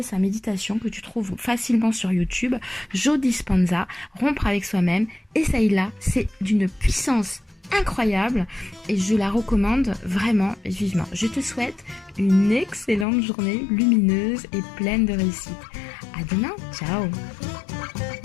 sa méditation que tu trouves facilement sur YouTube, Joe Dispenza, Rompre avec soi-même. Essaye-la, c'est d'une puissance incroyable et je la recommande vraiment vivement. Je te souhaite une excellente journée lumineuse et pleine de réussite. À demain, ciao!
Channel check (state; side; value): drops out; right; at 13.1 s